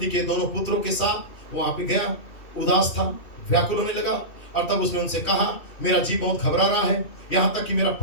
के दोनों पुत्रों के साथ वहां पे गया, उदास था, व्याकुल होने लगा, और तब उसने उनसे कहा, मेरा जी बहुत घबरा रहा है, यहाँ तक कि मेरा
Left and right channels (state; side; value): late; right; 2.7 ms